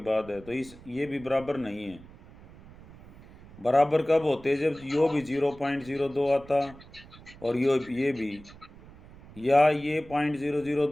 बाद है, तो इस ये भी बराबर नहीं है। बराबर कब होते? जब यो भी 0.02 आता और ये भी, या ये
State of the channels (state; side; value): noise; right; rumble, 21 dB below the sound